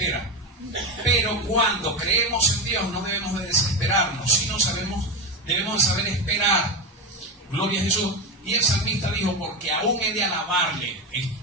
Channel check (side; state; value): both; normal; correlation 0.16